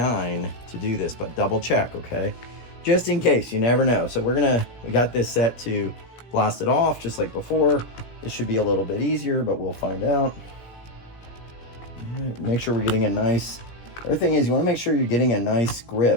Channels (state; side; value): late; right; 17 ms